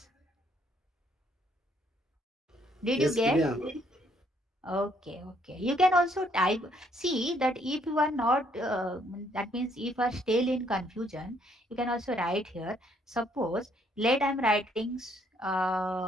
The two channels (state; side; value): normal; both; correlation 0.67